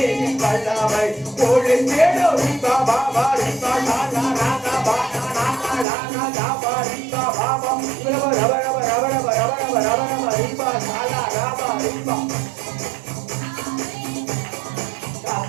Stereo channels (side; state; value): left; drops out; at 5.9 s